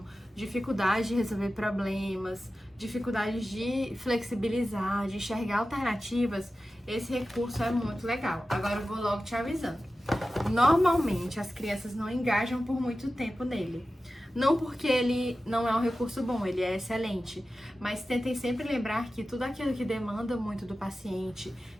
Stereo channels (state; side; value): normal; both; correlation 0.94